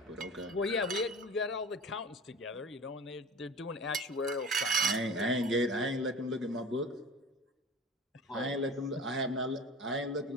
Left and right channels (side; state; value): both; normal; correlation 0.37